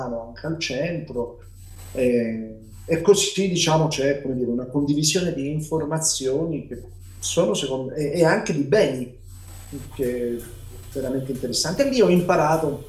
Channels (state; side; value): identical; both; correlation 1.00